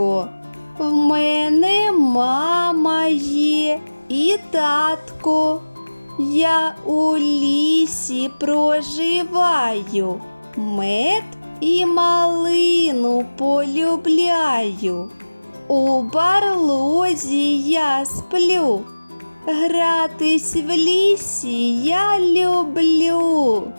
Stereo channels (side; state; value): both; inverted; correlation -1.00